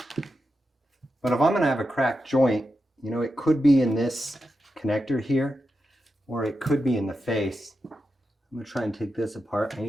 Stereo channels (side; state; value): both; normal; correlation 0.88